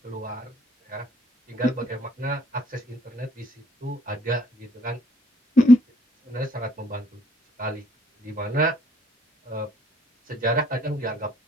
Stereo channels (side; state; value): both; normal; correlation 0.64